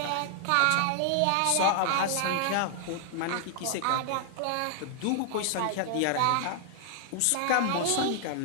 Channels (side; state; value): both; different; correlation -0.01